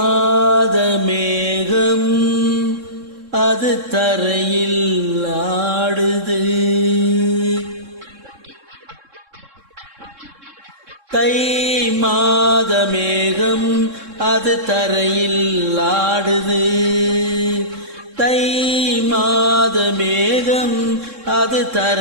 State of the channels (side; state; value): left; late; 3.6 ms